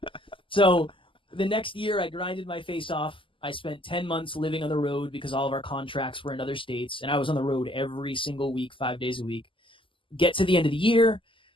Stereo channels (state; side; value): late; right; 0.25 ms